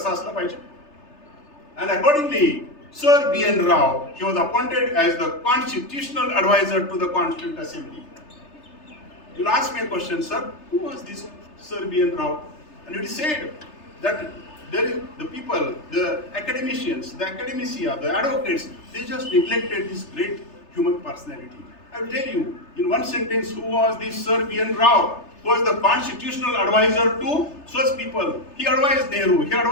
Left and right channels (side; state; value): right; late; 3.3 ms